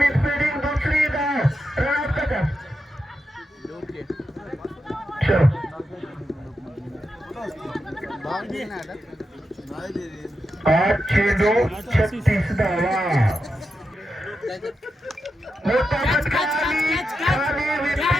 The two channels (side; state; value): both; normal; correlation 0.88